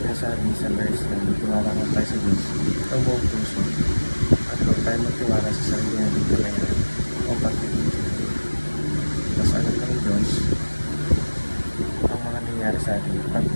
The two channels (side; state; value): both; inverted; correlation -1.00